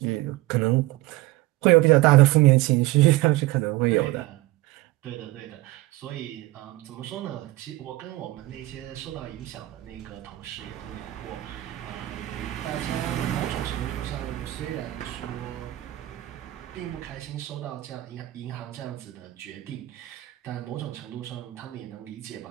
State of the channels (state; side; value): quieter; left; 17.8 dB